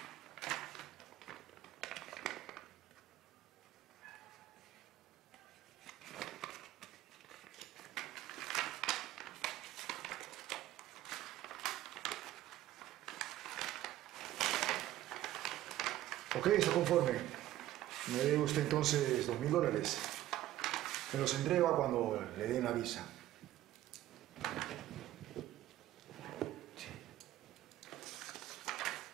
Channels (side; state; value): left; quieter; 14.2 dB